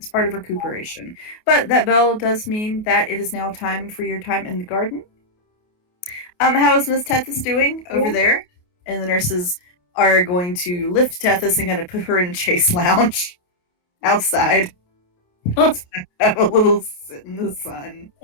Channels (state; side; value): late; right; 28 ms